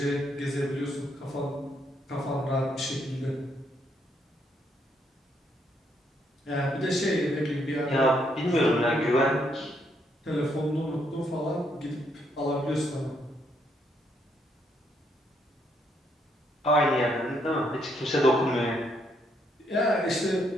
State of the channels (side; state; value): both; normal; correlation 0.74